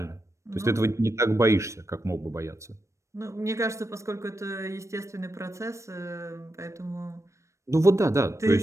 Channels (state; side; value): late; left; 0.15 ms